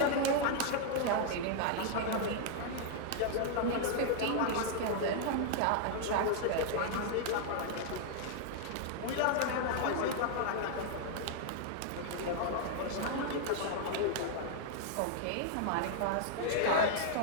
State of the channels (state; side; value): different; both; correlation -0.01